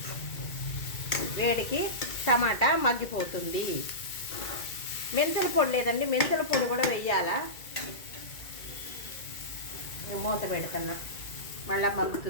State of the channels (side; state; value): right; late; 2.1 ms